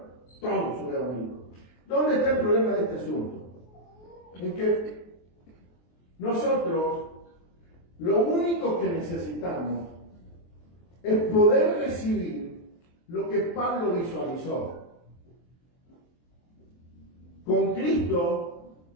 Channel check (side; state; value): right; late; 23 ms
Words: Todos son evangélicos. ¿Dónde está el problema de este asunto? En que nosotros lo único que necesitamos es poder recibir lo que Pablo visualizó. Con Cristo